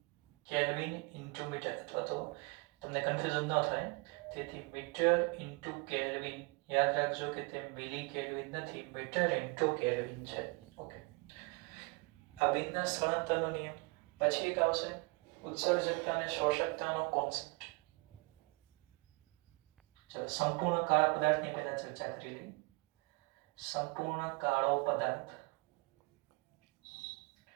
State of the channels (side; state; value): left; quieter; 30.3 dB